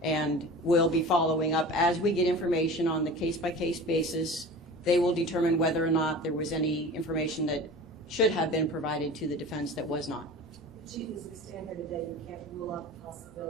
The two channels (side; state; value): both; normal; correlation 0.37